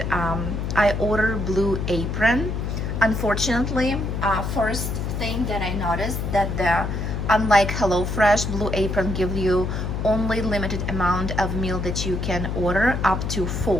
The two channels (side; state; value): left; noise; hum, 2 dB below the sound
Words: I ordered Blue Apron. Unfortunately, first thing that I noticed that unlike HelloFresh, Blue Apron gives you only limited amount of meal that you can order, up to